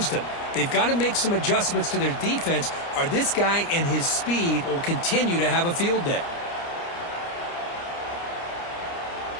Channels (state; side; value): late; right; 29 ms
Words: them. They've got to make some adjustments to their defense, or this guy and his speed will continue to have a field day.